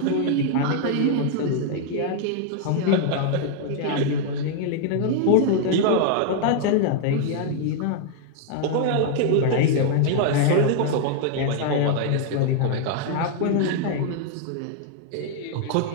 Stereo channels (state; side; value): different; both; correlation 0.00